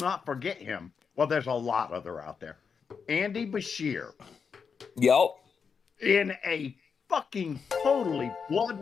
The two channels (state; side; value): quieter; right; 6.0 dB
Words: forget him. Well, there's a lot other out there. Andy Bashir. Yep. In a fucking totally blood